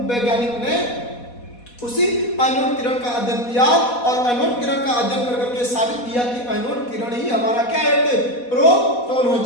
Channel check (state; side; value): late; right; 4.1 ms